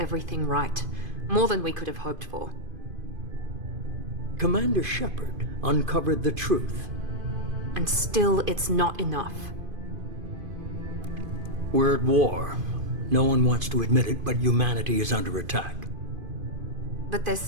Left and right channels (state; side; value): late; left; 2.5 ms